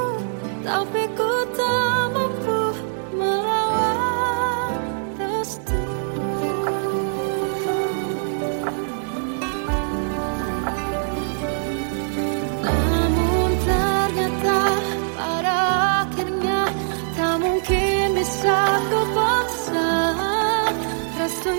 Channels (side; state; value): left; silent; 64 dB below the other